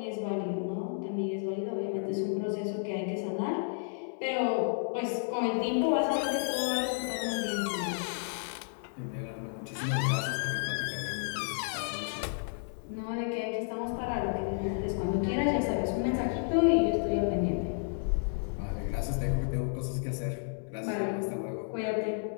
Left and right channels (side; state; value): right; silent; 57 dB below the other